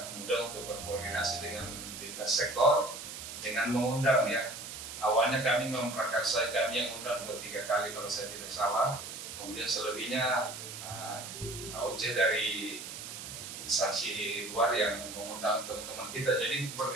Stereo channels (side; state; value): right; noise; hiss, 9 dB below the sound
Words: mudah untuk berkoordinasi dengan lintas sektor dengan mengundang ya. Awalnya kami memprakarsai, kami yang undang 2-3 kali kalau saya tidak salah, kemudian selebihnya AOC dari instansi luar yang mengundang teman-teman kita, jadi